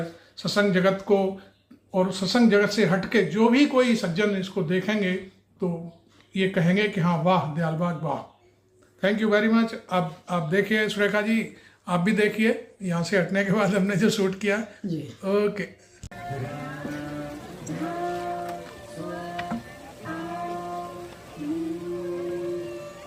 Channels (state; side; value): identical; both; correlation 1.00